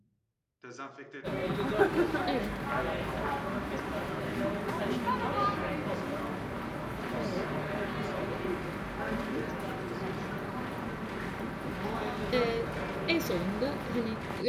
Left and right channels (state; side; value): identical; both; correlation 1.00